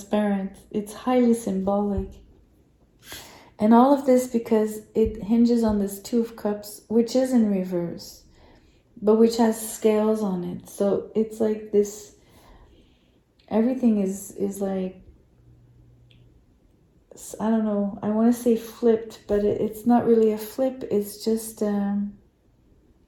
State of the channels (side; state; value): both; identical; correlation 1.00